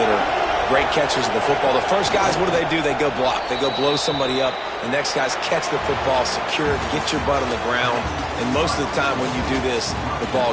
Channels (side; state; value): both; identical; correlation 1.00